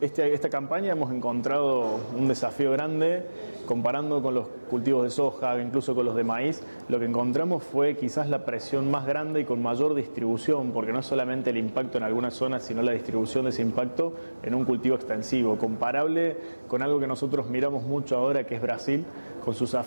campaña hemos encontrado un desafío grande comparando con los cultivos de soja, incluso con los de maíz. Lo que encontramos fue quizás la presión más grande y con mayor distribución, porque no es solamente el impacto en algunas zonas, sino la distribución de ese impacto en un cultivo extensivo, comparable con algo que nosotros miramos mucho ahora, que es Brasil, con su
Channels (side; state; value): both; inverted; correlation -1.00